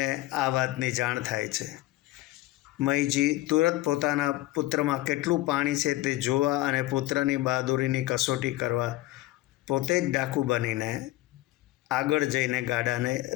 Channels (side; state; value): right; quieter; 17.5 dB